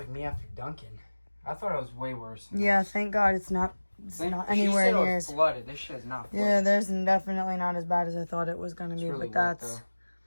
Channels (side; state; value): both; inverted; correlation -1.00